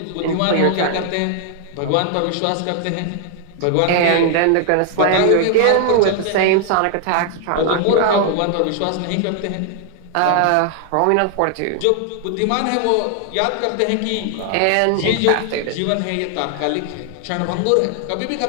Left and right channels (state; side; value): different; both; correlation 0.00